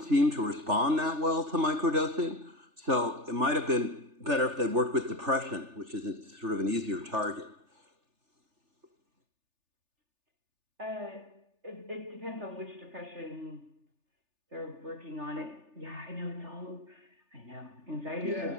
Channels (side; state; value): left; late; 3.4 ms